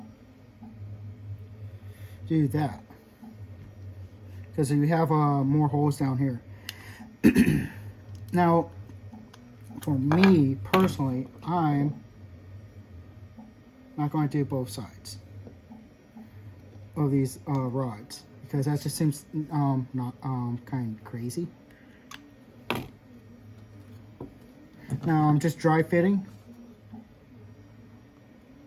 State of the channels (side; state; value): both; identical; correlation 1.00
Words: do that, because we have more holes down here. Now, for me personally, I'm not going to do both sides of these rods, because that just seems not kind of crazy. Now I'm just dry fitting.